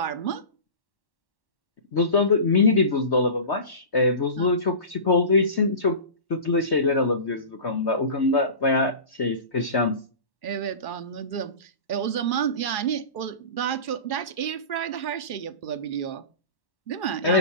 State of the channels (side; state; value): right; late; 1.1 ms